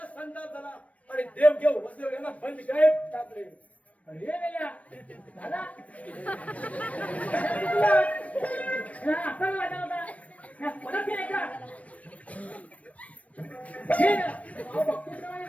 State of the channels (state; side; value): late; right; 0.066 ms